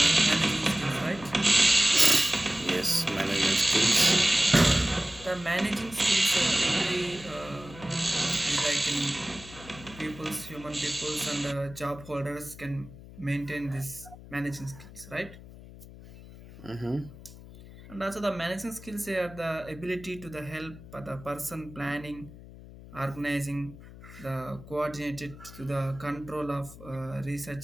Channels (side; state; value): left; noise; hum, 17 dB below the sound